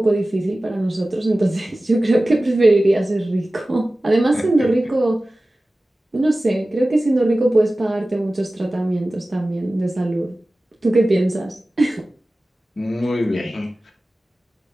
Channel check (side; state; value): both; normal; correlation 0.96